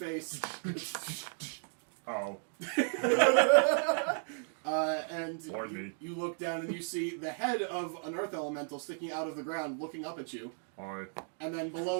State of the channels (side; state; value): left; silent; 55 dB below the other